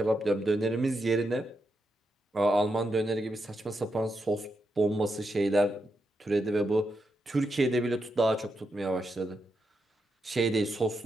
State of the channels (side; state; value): both; normal; correlation 0.84